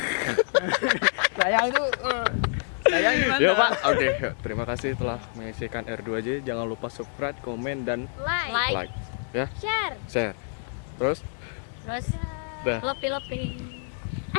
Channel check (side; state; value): right; silent; digital silence